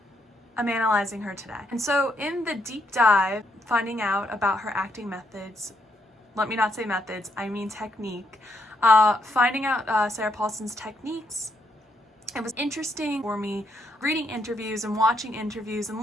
I'm analyzing her today. And so in the deep dive, finding out about her acting methods, let me not say methods, I mean technique, finding out Sarah Paulson's techniques, it was interesting for me reading interviews and watching interviews and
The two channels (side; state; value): both; normal; correlation 0.75